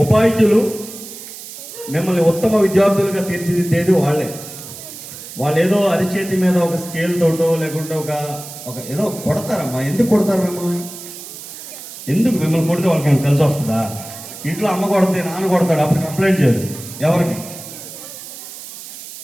ఉపాధ్యులు మిమ్మల్ని ఉత్తమ విద్యార్థులుగా తీర్చిదిద్దేది వాళ్ళే. వాళ్ళు ఏదో అరిచేతి మీద ఒక స్కేల్ తోటో లేకుంటే ఒక ఏదో కొడతారమ్మా. ఎందుకు కొడతారు మిమ్మల్ని? ఎందుకు మిమ్మల్ని కొడితే వాళ్ళకి కలిసి వస్తుందా? ఇంట్లో అమ్మ కొడితే నాన్న కొడతాడు, అప్పుడు కంప్లైంట్ చేయరు. ఎవరికి?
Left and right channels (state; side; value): noise; right; hiss, 13 dB below the sound